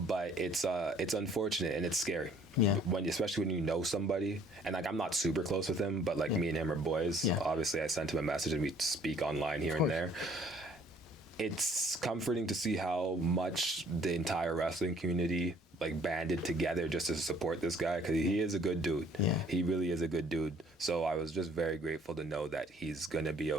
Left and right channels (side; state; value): both; normal; correlation 0.58